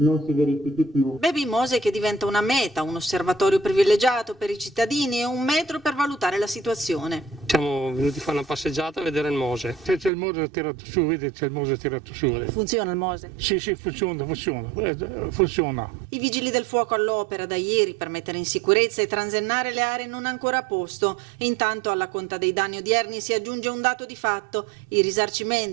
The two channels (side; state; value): left; drops out; at 10.1 s